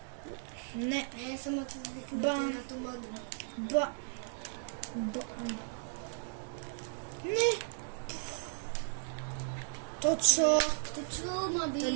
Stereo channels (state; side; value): silent; left; digital silence